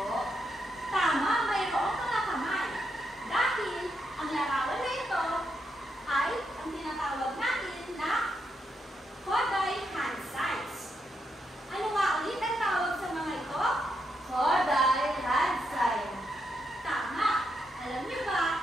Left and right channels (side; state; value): both; normal; correlation 0.81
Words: Tama, mayroong mga kamay. Dahil ang larawan na ito ay ang tinatawag natin na Koday hand signs. Ano nga ulit ang tawag sa mga ito? Koday hand sign. Tama. Alam niyo